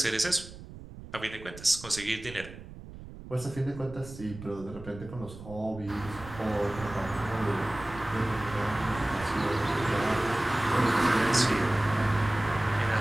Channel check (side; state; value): right; noise; rumble, 15 dB below the sound